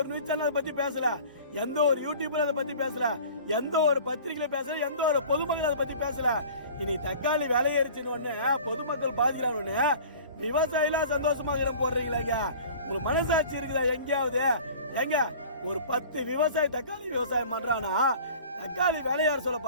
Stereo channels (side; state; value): both; inverted; correlation -0.44